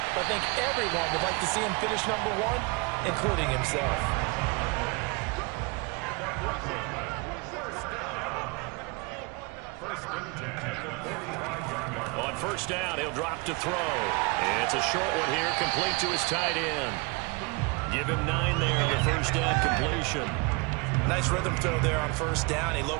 but I think everyone would like to see him finish #1, including himself. On 1st down, he'll drop to throw. It's a short one here, complete to his tight end. Give him 9 there on the 1st down completion. Nice rhythm throw there on 1st down. He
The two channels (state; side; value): quieter; left; 28.9 dB